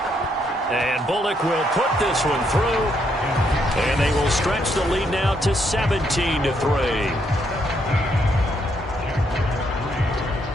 And Bullock will put this one through. And they will stretch the lead now to 17-3.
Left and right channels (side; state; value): both; normal; correlation 0.74